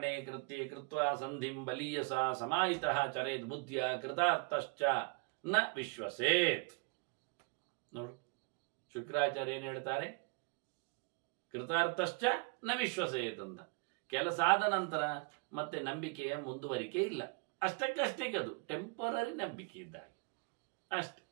ಕೃತ್ಯೆ ಕೃತ್ವ ಸಂಧಿಂ ಬಲೀಯಸ ಸಮಾಹಿತಃ ಚರೇತ್ ಬುದ್ಧಿಯ ಕೃತಾರ್ಥಶ್ಚ ನ ವಿಶ್ವಸೇತ್. ನೋಡು, ಶುಕ್ರಾಚಾರ್ಯ ಏನು ಹೇಳ್ತಾರೆ? ಕೃತಾರ್ಥಶ್ಚ ನ ವಿಶ್ವಸೇತ್ ಅಂತ. ಕೆಲಸ ಆದ ನಂತರ ಮತ್ತೆ ನಂಬಿಕೆಯ ಮುಂದುವರಿಕೆ ಇಲ್ಲ, ಅಷ್ಟಕ್ಕಷ್ಟೇ, ಅದು ಟೆಂಪರರಿ ನಂಬಿಕೆ ಇದ್ದಾಗೆ ಅಷ್ಟೆ.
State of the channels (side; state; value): left; quieter; 31.5 dB